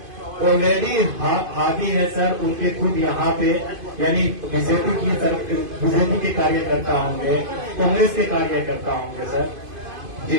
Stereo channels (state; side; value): late; left; 2.5 ms